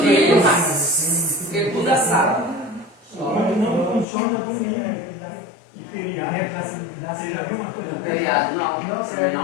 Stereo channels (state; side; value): drops out; right; at 4.0 s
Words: porque tudo é sábado. Mas não funciona domingo e feriado. Você já viu uma coisa Feriado, não